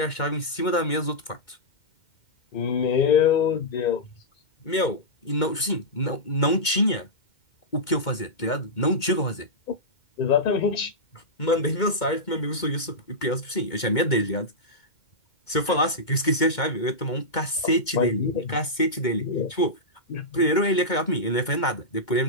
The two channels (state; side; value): late; right; 2.2 ms